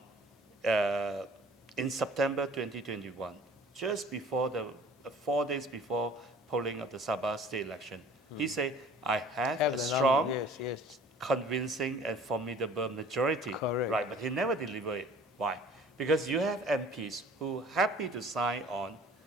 in September 2021, just before 4 days before polling of the Sabah state election. He said, I have a strong, yes. convincing and formidable majority. Correct. Right, but he never delivered it. Why? Because you have MPs who are happy to sign on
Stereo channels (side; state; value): both; normal; correlation 0.49